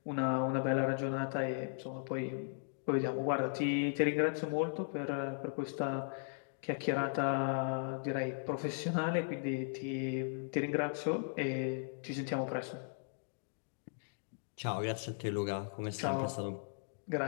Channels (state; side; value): silent; right; digital silence